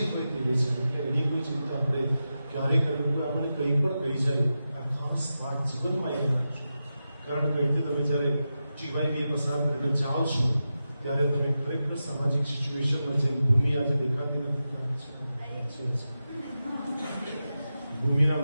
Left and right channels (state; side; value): inverted; both; correlation -0.91